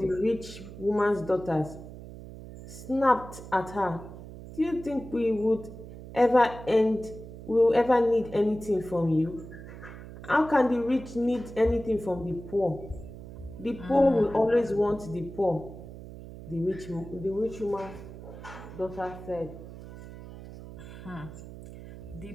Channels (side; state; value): right; noise; hum, 14 dB below the sound